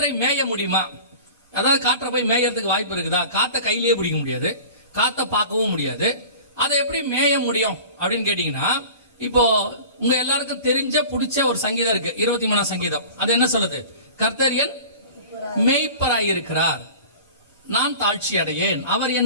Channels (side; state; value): both; inverted; correlation -0.40